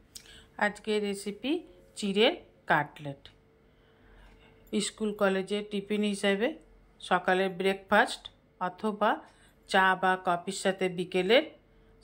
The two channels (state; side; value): identical; both; correlation 1.00